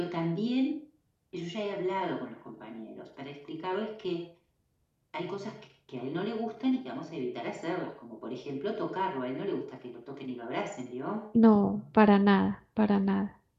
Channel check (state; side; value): identical; both; correlation 1.00